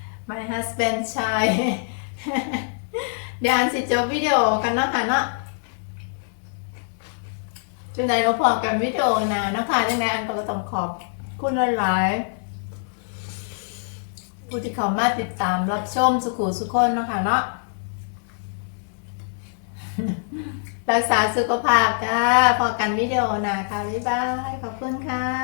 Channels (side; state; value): right; silent; digital silence